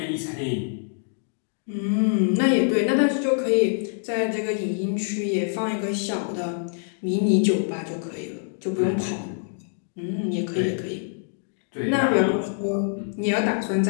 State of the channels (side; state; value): right; silent; digital silence